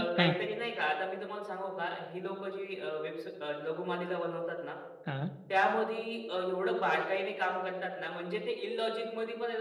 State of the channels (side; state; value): both; identical; correlation 1.00